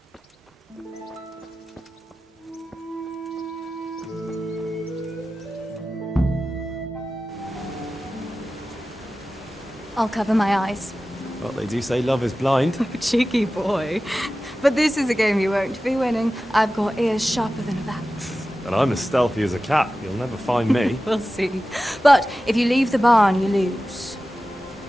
I'll cover my eyes. Well, they do say love is blind. Cheeky boy. But this is a game you won't be winning. I've got ears sharper than a bat. And I'm as stealthy as a cat. You'll never find me. We'll see. But if you leave the barn, you lose.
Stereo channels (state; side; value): normal; both; correlation 0.95